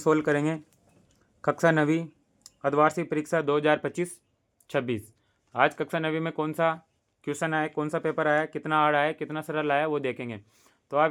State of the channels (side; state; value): both; identical; correlation 1.00